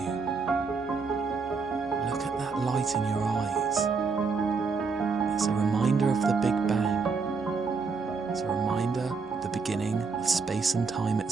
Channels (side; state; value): left; quieter; 4.8 dB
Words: Look at that light in your eyes. It's a reminder of the Big Bang. It's a reminder of the beginning of space and time